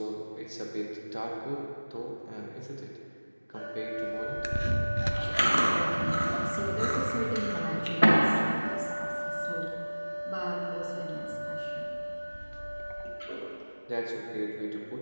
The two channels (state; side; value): inverted; both; correlation -1.00